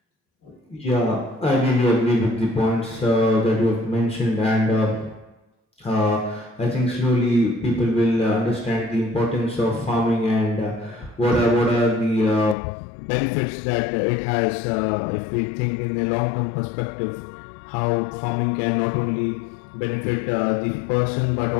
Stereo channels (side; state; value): right; drops out; at 12.6 s